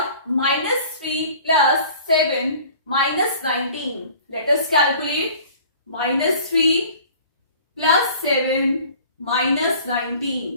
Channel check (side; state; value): both; inverted; correlation -0.48